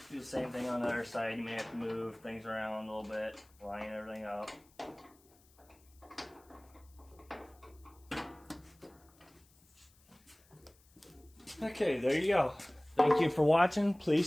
Do the same thing on the other side. You may have to move things around a little bit, line everything up. Okay, there you go. Thank you for watching.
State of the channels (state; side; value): noise; left; hiss, 30 dB below the sound